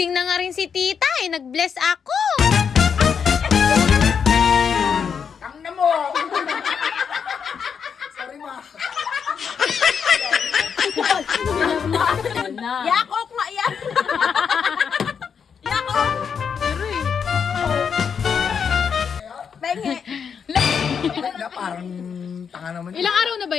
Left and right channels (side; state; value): right; quieter; 6.8 dB